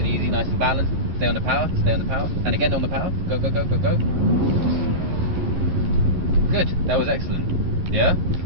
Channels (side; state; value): left; late; 11 ms